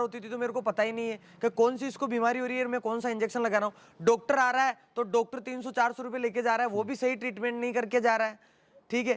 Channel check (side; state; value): both; identical; correlation 1.00